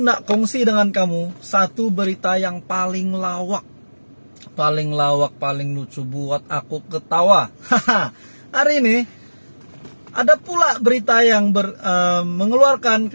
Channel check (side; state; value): both; inverted; correlation -1.00